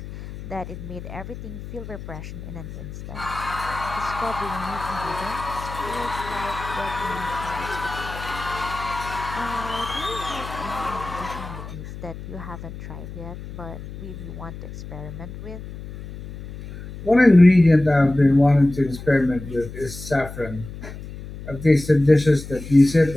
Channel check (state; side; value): noise; left; hum, 12 dB below the sound